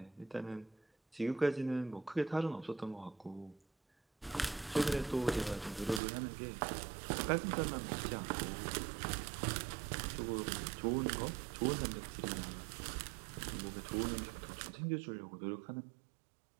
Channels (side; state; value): left; drops out; at 6.0 s